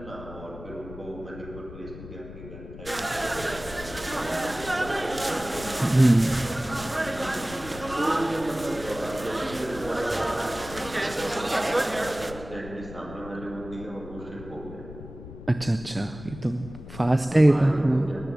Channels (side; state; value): left; noise; rumble, 14 dB below the sound